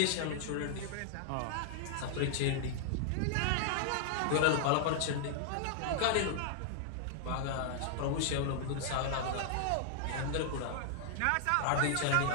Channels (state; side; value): different; both; correlation -0.01